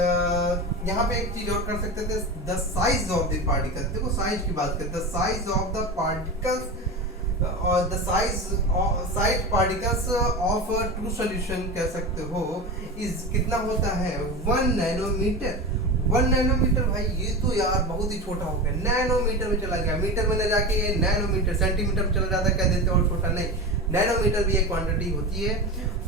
यहाँ पे एक चीज और कर सकते थे, the size of the particle. देखो साइज की बात करते हैं, the size of the particles और the size particles of true solution कह सकते हो इज कितना होता है, 1 नैनोमीटर। 1 नैनोमीटर भाई ये तो यार बहुत ही छोटा हो गया, नैनोमीटर में चला गया, मीटर में न जाके ये नैनोमीटर सेंटीमीटर में चला जाता है, कह देते और छोटा नहीं, नैनोमीटर भी एक क्वांटिटी होती है।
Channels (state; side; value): normal; both; correlation 0.25